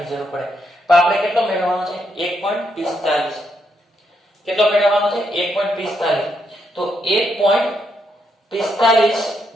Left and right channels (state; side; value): normal; both; correlation 0.78